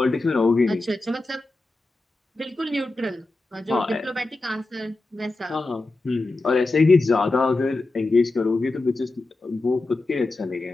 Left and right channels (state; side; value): quieter; right; 3.1 dB